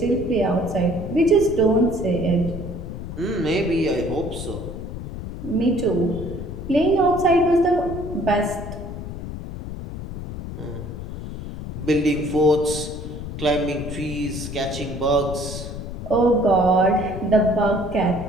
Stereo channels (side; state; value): left; noise; rumble, 8 dB below the sound